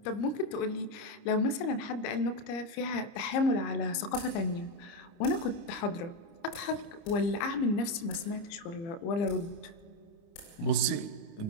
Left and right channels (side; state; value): right; late; 30 ms